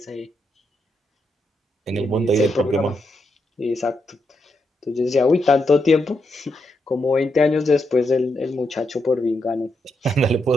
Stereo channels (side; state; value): both; normal; correlation 0.82